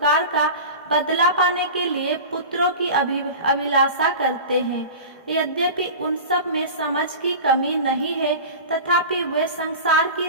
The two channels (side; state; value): both; inverted; correlation -0.33